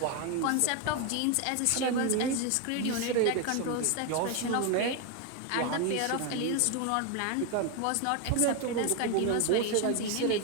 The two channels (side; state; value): both; different; correlation 0.01